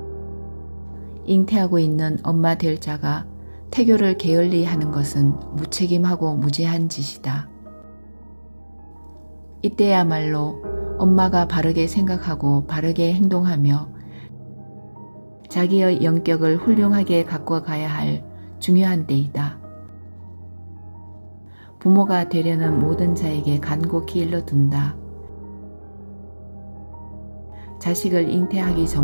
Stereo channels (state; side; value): inverted; both; correlation -1.00